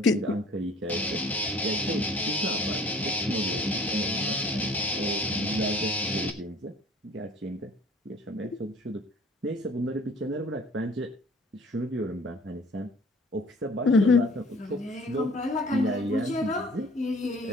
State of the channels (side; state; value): both; normal; correlation 0.51